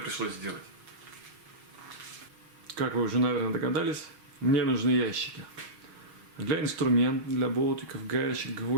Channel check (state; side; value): late; left; 6.3 ms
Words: сделать. Как вы уже, наверное, догадались, мне нужны ящики. Для инструментов, для болтиков, гаечек,